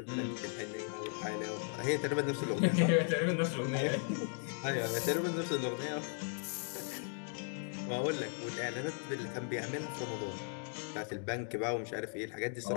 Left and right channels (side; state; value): right; silent; 53 dB below the other